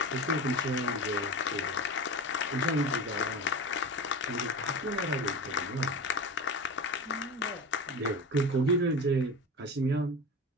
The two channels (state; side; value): normal; both; correlation 0.28